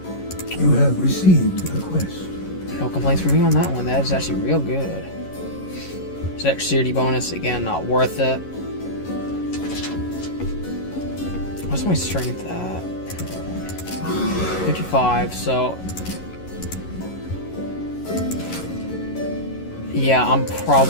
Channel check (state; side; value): late; right; 11 ms